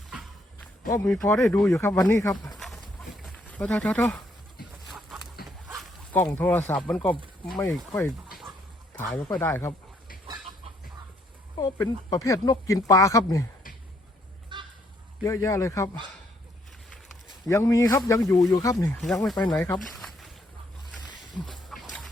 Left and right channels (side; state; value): both; normal; correlation 0.70